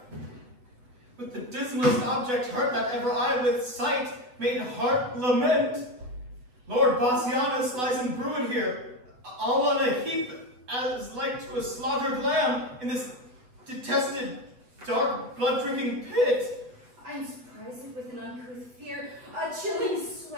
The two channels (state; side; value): late; left; 8.1 ms